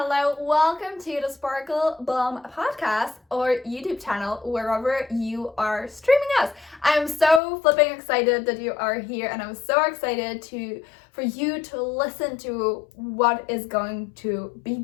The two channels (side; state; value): right; drops out; at 7.4 s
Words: Welcome to the Sparkle Bomb podcast or YouTube channel, wherever you are streaming us. I'm so flipping excited that you are here, and I'm so excited for you to listen to what is going to be